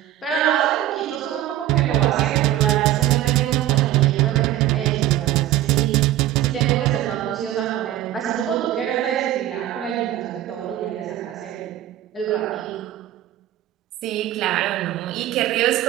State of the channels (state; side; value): quieter; left; 13.4 dB